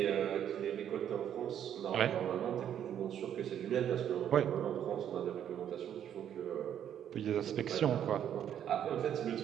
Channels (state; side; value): quieter; left; 9.8 dB